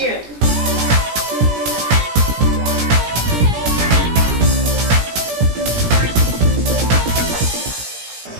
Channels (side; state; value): left; late; 17 ms